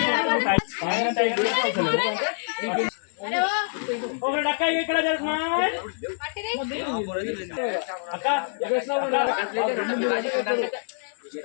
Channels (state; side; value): silent; right; 59 dB below the other